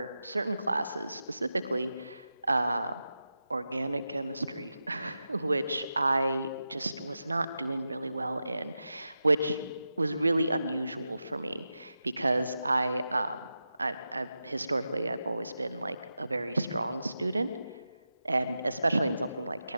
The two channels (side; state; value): both; inverted; correlation -0.91